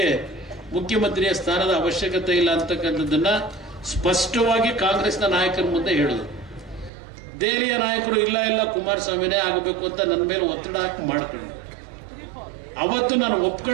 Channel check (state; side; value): drops out; left; at 6.9 s